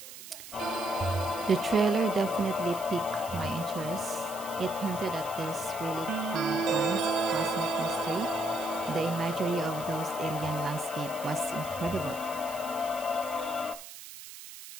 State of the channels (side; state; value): right; noise; hiss, 14 dB below the sound